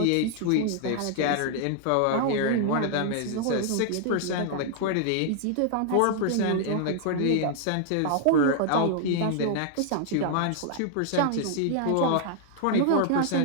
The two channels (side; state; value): both; different; correlation 0.00